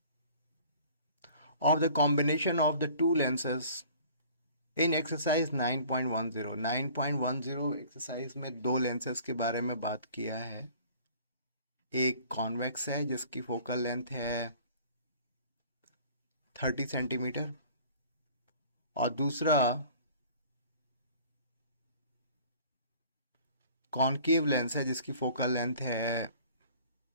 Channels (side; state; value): both; inverted; correlation -0.49